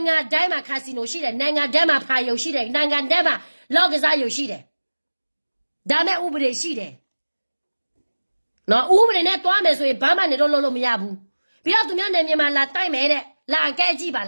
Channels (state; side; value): inverted; both; correlation -1.00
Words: ငံတိုင်းမှာခါစီနိုရှိတယ်နိုင်ငံတိုင်းမှာဖာယုံရှိတယ်နိုင်ငံတိုင်းမှာလောက်ကစားယုံရှိတယ်ဒါမဲ့ဥပဒေရှိတယ်နော်ဥပဒေနဲ့တွားမယ်ဆိုရင်ဘာမှနေတော့လို့မရဘူးပြီးတော့သူများနေမြန်မာလာတိုက်မယ်တဲ့လာကဲကြည့်ပါ